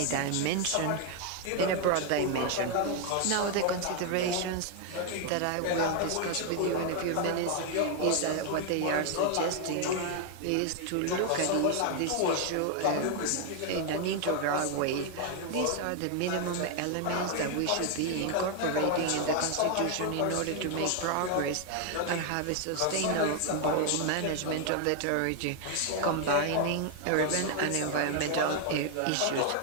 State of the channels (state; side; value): different; both; correlation 0.00